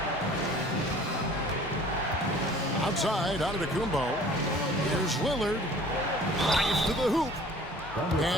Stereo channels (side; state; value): both; normal; correlation 0.50